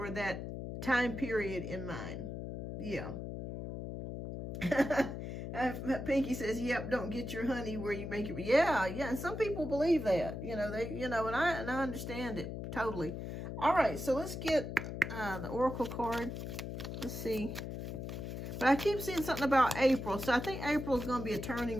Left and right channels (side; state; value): left; noise; hum, 6 dB below the sound